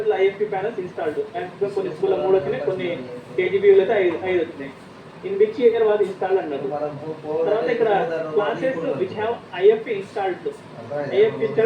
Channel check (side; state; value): both; identical; correlation 1.00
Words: IFP panels installed. Maximum కొన్ని స్కూల్లో 3 వచ్చినాయి, కొన్ని కేజీబీలో అయితే 5 వచ్చినాయి. In which year was installed అన్నారు. తర్వాత ఇక్కడ classes which have IFP installed. IFP